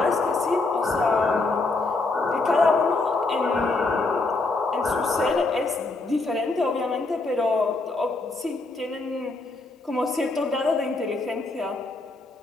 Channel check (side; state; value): right; quieter; 3.4 dB